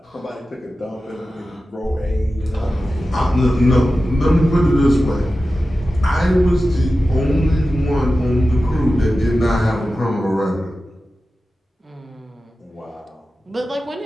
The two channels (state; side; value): normal; both; correlation 0.94